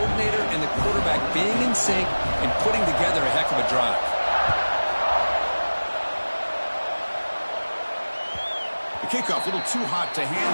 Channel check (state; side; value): inverted; both; correlation -1.00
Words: and the quarterback being in sync and putting together a heck of a drive. The kickoff, a little too hot to